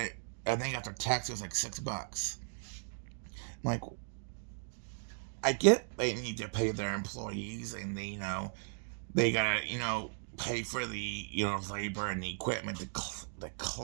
I think after tax it was like $6. I'm like, I get they need to pay their employees, and they gotta pay for the labor and the equipment to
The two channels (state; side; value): silent; left; digital silence